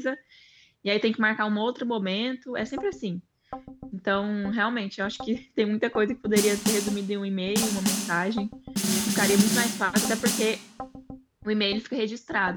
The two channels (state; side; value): identical; both; correlation 1.00